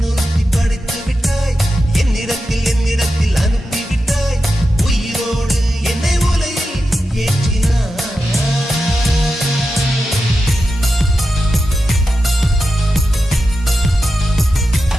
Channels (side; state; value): both; normal; correlation 0.90